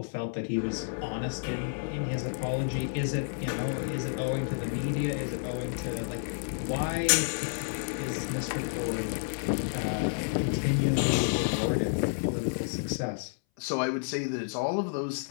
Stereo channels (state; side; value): silent; right; 58 dB below the other